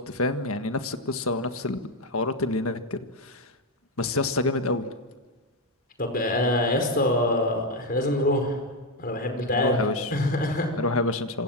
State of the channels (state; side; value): normal; both; correlation 0.07